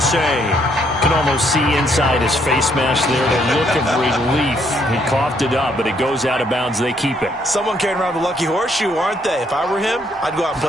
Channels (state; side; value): normal; both; correlation 0.70